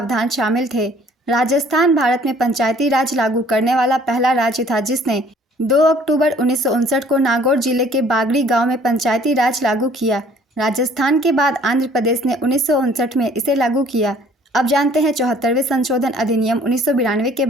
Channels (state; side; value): normal; both; correlation 0.56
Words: शामिल थे। राजस्थान भारत में पंचायती राज लागू करने वाला पहला राज्य था, जिसने 2 अक्टूबर 1959 को नागौर जिले के बागड़ी गांव में पंचायती राज लागू किया। राजस्थान के बाद आंध्र प्रदेश ने 1959 में इसे लागू किया। अब जानते हैं 74वें संशोधन अधिनियम 1992 के